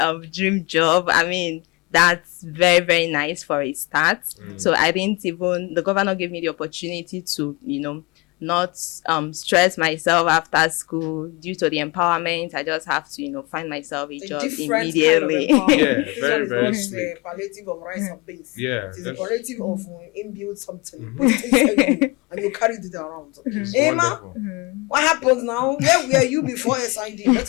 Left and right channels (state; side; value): quieter; right; 26.4 dB